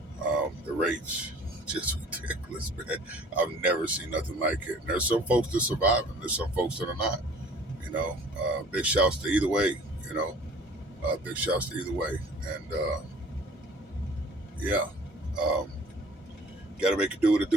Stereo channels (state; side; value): normal; both; correlation 0.50